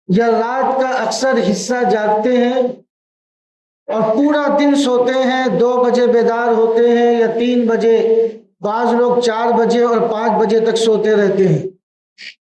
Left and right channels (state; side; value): identical; both; correlation 1.00